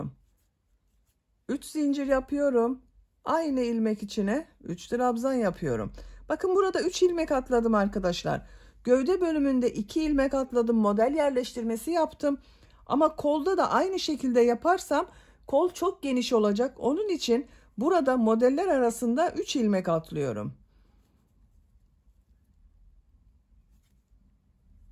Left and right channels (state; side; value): identical; both; correlation 1.00